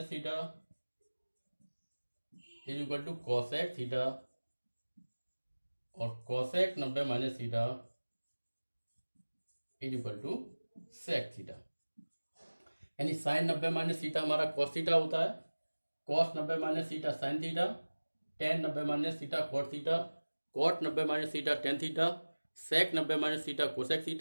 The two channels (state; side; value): inverted; both; correlation -1.00